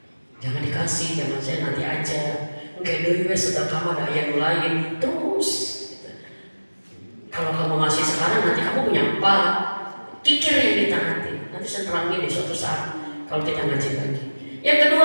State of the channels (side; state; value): both; inverted; correlation -1.00